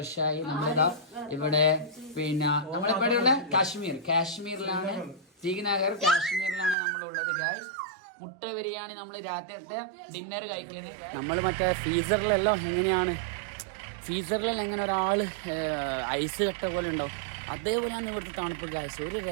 നമ്മളിതാ ഇവിടെ, പിന്നെ നമ്മളിവിടെയുള്ള കാശ്മീരിലാണ്, ശ്രീനഗർ കാശ്മീരിലാണ് നമ്മളുള്ളത് ഗായ്സ്. മുട്ട ബിരിയാണി നമ്മൾ രാത്രിയത്തെ ഡിന്നർ കഴിക്കുന്നത്. നമ്മൾ മറ്റേ ഫ്രീസറിലെല്ലാം എങ്ങനെയാണ്, ഫ്രീസറിലെല്ലാം എങ്ങനെ ഒരാൾ ഐസ് കട്ട പോലെ ഉണ്ടാവും, അതേപോലെയാണ് ഇവിടുത്തെ തണുപ്പ് ഗായ്സ്. ഒരു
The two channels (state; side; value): drops out; left; at 6.8 s